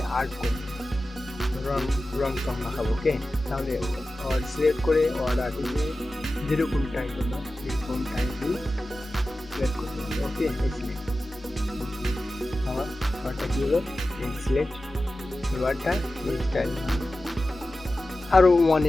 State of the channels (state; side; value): normal; both; correlation 0.94